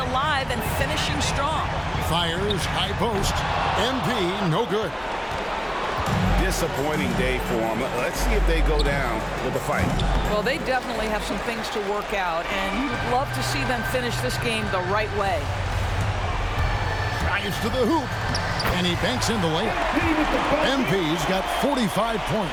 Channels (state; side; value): identical; both; correlation 1.00